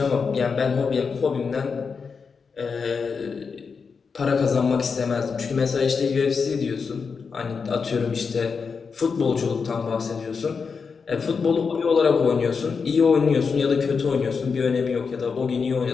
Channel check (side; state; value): right; quieter; 5.4 dB